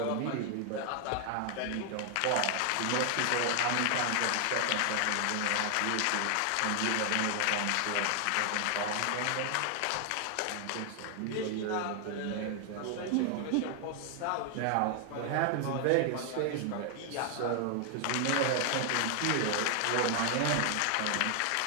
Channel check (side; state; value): both; different; correlation 0.00